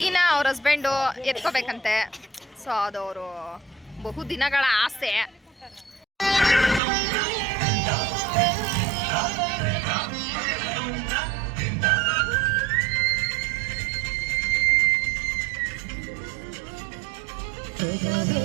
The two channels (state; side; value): drops out; left; at 6.8 s